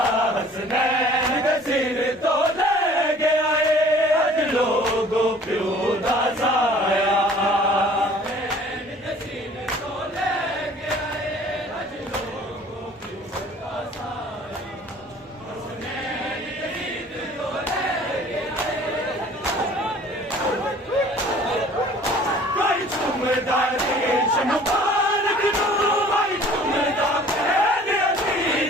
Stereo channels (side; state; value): both; normal; correlation 0.51